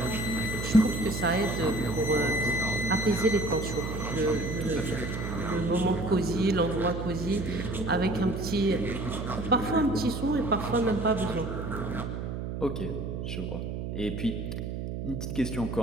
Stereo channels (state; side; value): noise; right; hum, 5 dB below the sound